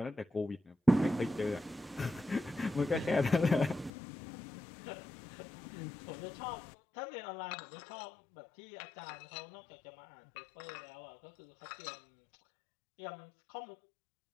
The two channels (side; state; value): right; drops out; at 3.9 s